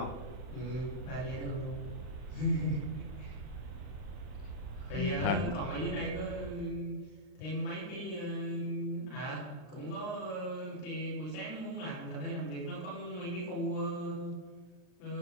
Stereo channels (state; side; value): late; right; 40 ms